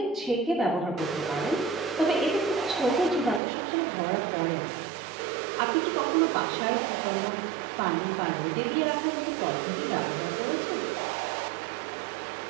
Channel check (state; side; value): drops out; left; at 3.4 s